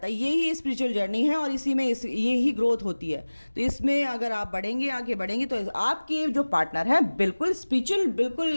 है, यही स्पिरिचुअल जर्नी है और इसी में ये ही ग्रोथ होती है। तो इसमें अगर आप बढ़ेंगे, आगे बढ़ेंगे तो आपके जो पार्टनर है बिल्कुल स्पिरिचुअल,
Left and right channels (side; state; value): both; inverted; correlation -1.00